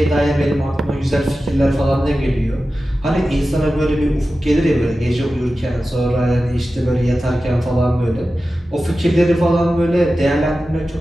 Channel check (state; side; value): normal; both; correlation 0.94